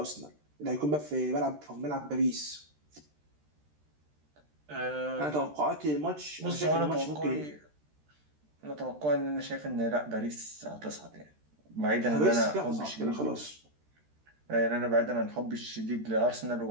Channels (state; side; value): late; left; 13 ms